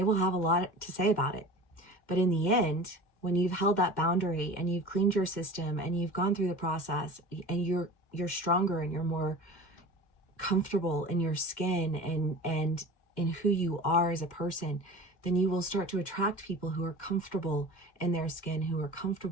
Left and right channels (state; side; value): late; right; 2.1 ms